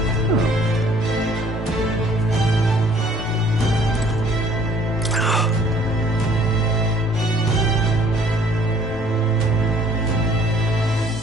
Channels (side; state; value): both; normal; correlation 0.58